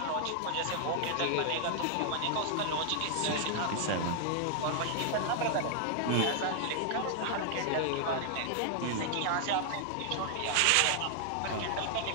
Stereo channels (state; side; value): different; both; correlation 0.00